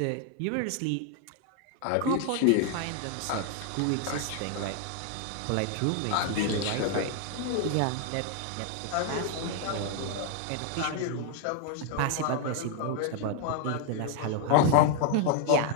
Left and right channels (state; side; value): different; both; correlation 0.00